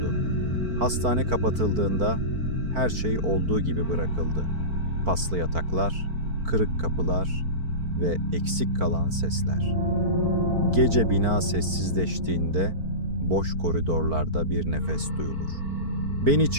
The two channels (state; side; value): late; left; 4.5 ms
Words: Hastane kapatıldığında her şey olduğu gibi bırakıldı. Paslı yataklar, kırık kapılar ve eksik kalan sesler. Gece bina sessizleştiğinde boş koridorlarda bir nefes duyulur. Beni